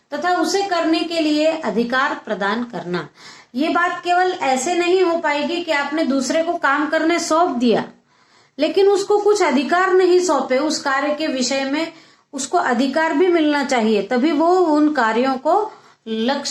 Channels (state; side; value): identical; both; correlation 1.00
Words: तथा उसे करने के लिए अधिकार प्रदान करना। ये बात केवल ऐसे नहीं हो पाएगी कि आपने दूसरे को काम करने सौंप दिया लेकिन उसको कुछ अधिकार नहीं सौंपे, उस कार्य के विषय में उसको अधिकार भी मिलना चाहिए, तभी वो उन कार्यों को